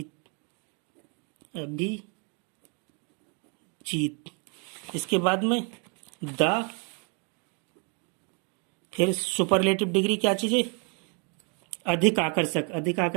अभिजीत। इसके बाद में द, फिर सुपरलेटिव डिग्री क्या चीज है, अधिक आकर्षक। अधिक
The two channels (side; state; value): left; quieter; 36.5 dB